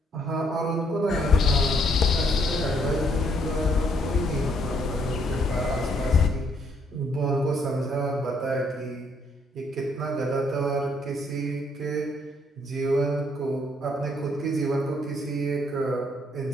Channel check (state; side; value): normal; both; correlation 0.69